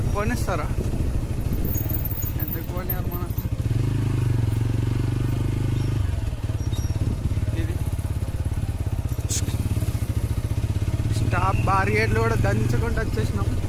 పోనిస్తారా? ఎందుకు పోనియారు మన? ఇది స్టాప్ బార్గేట్లు కూడా దంచుకుంటూ వచ్చేసినాం.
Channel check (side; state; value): both; identical; correlation 1.00